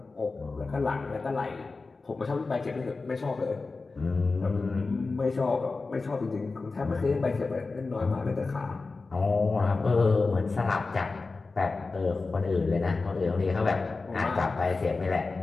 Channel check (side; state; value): right; quieter; 3.9 dB